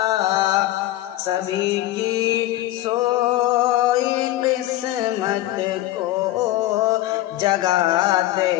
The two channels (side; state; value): right; quieter; 15.5 dB